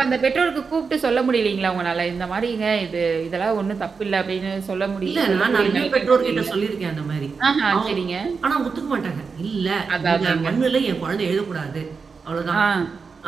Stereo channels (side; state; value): left; quieter; 5.1 dB